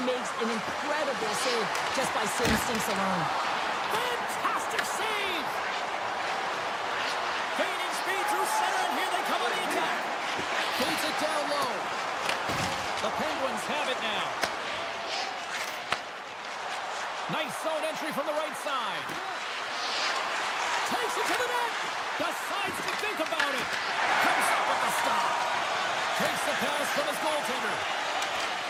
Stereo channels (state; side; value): identical; both; correlation 1.00